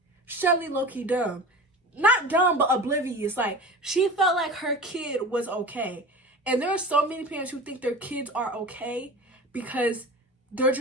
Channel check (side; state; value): both; normal; correlation 0.35